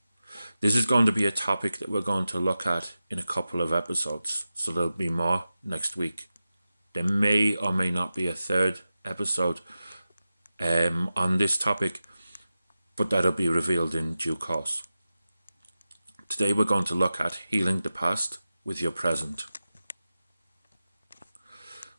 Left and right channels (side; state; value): both; inverted; correlation -0.94